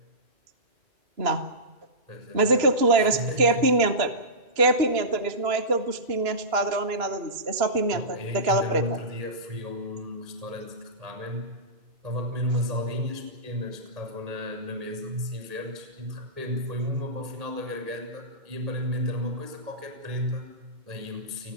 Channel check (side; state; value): left; late; 2.9 ms